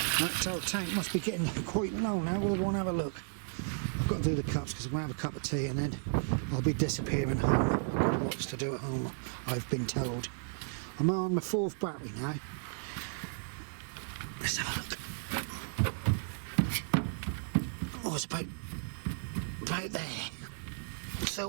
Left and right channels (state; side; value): silent; left; digital silence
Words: That old tank must be getting quite low now. We'll go and have a look. I've got to do the cups because I'm going to have a cup of tea and then I'll be disappearing home. I've got lots to do at home, I've been told. I'm on my 4th battery now. Let's have a look. Oh, it's about there.